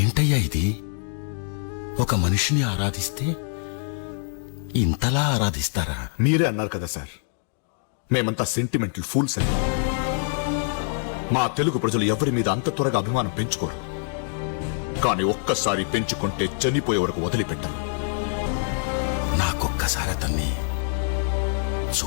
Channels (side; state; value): right; silent; digital silence